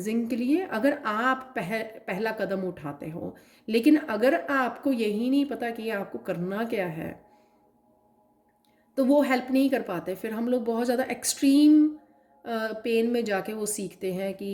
के लिए, अगर आप पहला कदम उठाते हो। लेकिन अगर आपको यही नहीं पता कि आपको करना क्या है, तो वो हेल्प नहीं कर पाते। फिर हम लोग बहुत ज़्यादा एक्सट्रीम पेन में जाके वो सीखते हैं कि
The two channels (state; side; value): identical; both; correlation 1.00